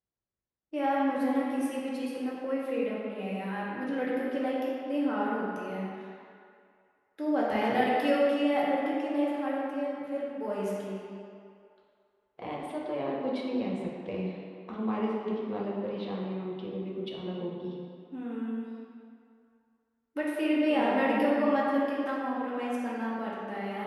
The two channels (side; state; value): both; identical; correlation 1.00